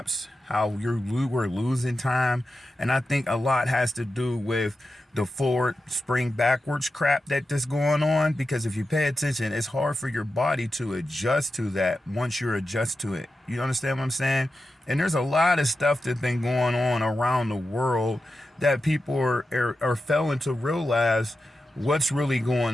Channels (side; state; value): both; normal; correlation 0.91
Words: How we're losing time, and I think a lot has to do with the forward spring backwards crap that's going on. Because if you pay attention, it's hard for your body to adjust to that once you're adjust to it. You understand what I'm saying? And there's a lot of stuff that's been going on around the world that people are failing to realize what's really